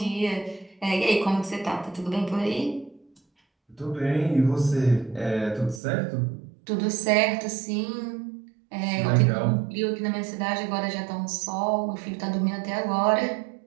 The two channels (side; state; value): left; drops out; at 5.8 s